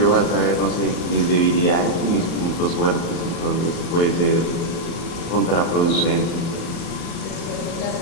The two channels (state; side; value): late; right; 34 ms